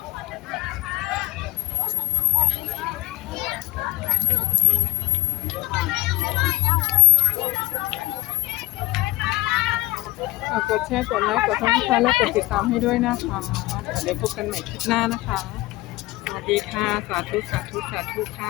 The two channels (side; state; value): right; quieter; 19.1 dB